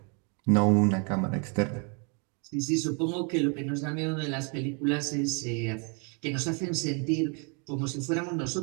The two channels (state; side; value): quieter; left; 36.3 dB